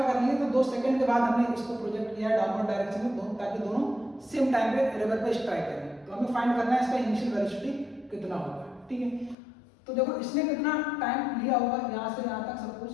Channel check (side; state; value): right; drops out; at 9.3 s